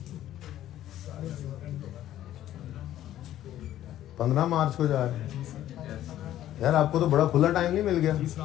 15 मार्च को जा रहे हैं यार। आपको तो बड़ा खुला टाइम नहीं मिल गया।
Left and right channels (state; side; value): quieter; right; 12.7 dB